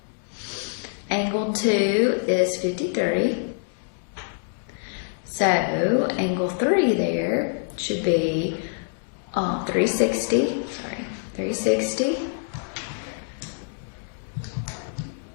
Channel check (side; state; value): right; silent; digital silence